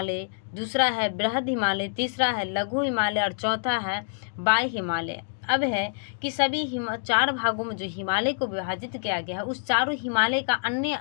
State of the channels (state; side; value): silent; right; digital silence